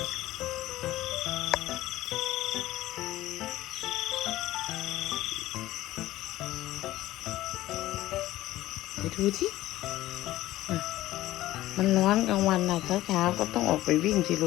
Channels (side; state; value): right; quieter; 15.8 dB